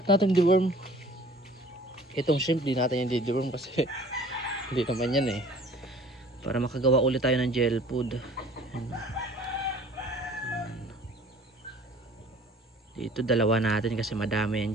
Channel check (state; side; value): normal; both; correlation 0.50